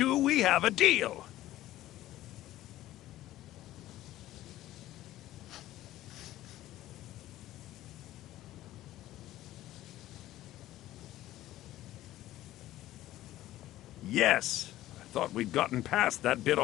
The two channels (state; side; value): quieter; right; 14.8 dB